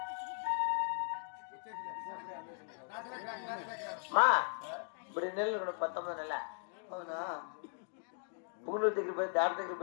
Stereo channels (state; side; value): silent; right; 52 dB below the other